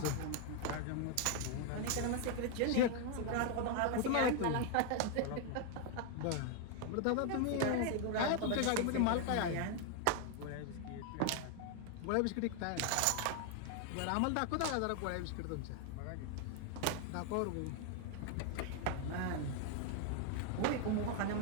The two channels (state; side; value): different; both; correlation 0.00